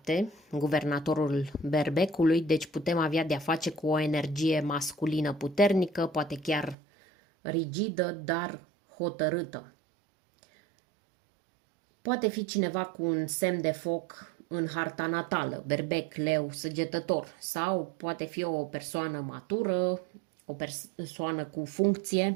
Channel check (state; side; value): drops out; left; at 6.8 s